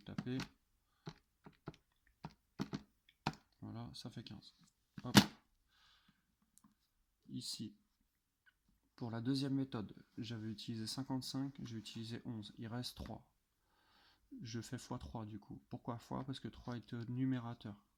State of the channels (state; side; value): identical; both; correlation 1.00